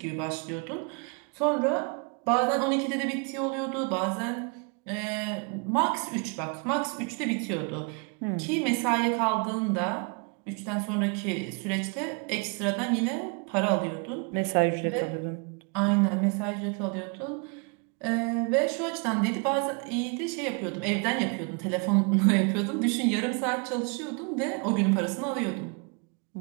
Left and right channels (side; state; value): left; quieter; 35.2 dB